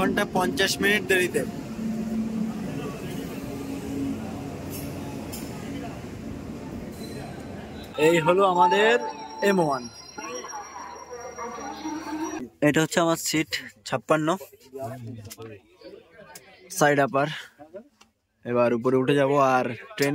50 মিনিট দেরিতে। এই হলো আমাদের M1। এটা হচ্ছে আমার সিট 56, সাইড আপার। এবার উপরে উঠে যাব, আর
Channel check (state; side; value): identical; both; correlation 1.00